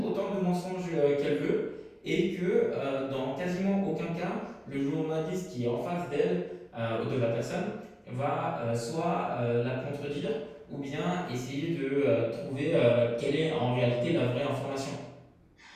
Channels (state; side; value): identical; both; correlation 1.00